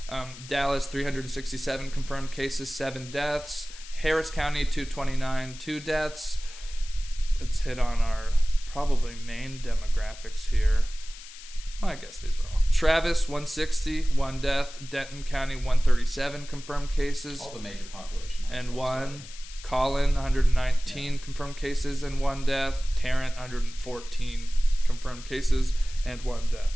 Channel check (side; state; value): left; noise; hiss, 16 dB below the sound